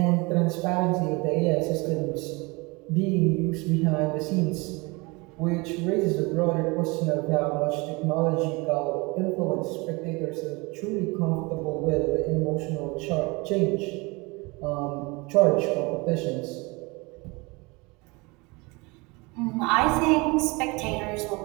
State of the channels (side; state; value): left; quieter; 26.2 dB